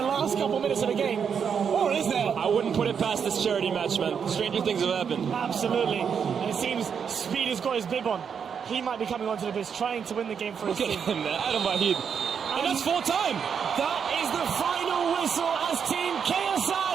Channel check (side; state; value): left; quieter; 7.0 dB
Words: last couple minutes of the game. Or is there? I wouldn't put it past this charity match, man. Stranger things have happened. Absolutely. And it seems Speed has got his bib on. He might be coming onto the pitch trying to win the game for his Look at team. him, man. Adam Wahid. And that's full time. That is the final whistle as Team KSI